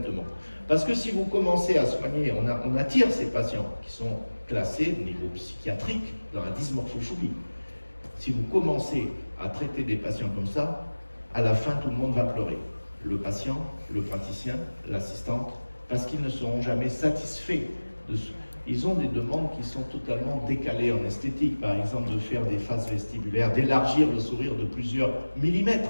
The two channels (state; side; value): inverted; both; correlation -1.00